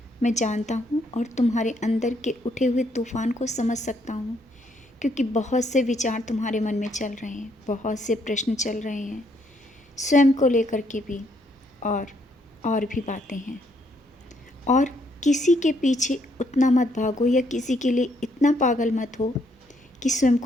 मैं जानता हूँ और तुम्हारे अंदर के उठे हुए तूफ़ान को समझ सकता हूँ, क्योंकि बहुत से विचार तुम्हारे मन में चल रहे हैं, बहुत से प्रश्न चल रहे हैं, स्वयं को लेकर के भी और भी बातें हैं। और किसी के पीछे उतना मत भागो या किसी के लिए इतना पागल मत हो कि स्वयं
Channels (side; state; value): both; normal; correlation 0.71